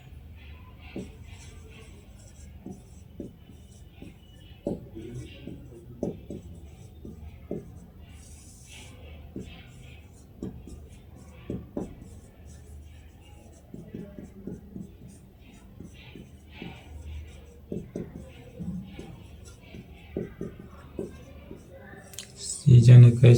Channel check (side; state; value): both; identical; correlation 1.00